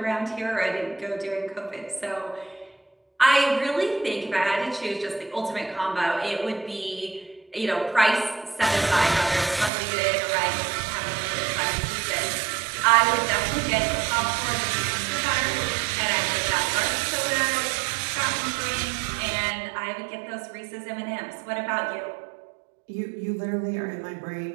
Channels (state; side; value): drops out; left; at 9.7 s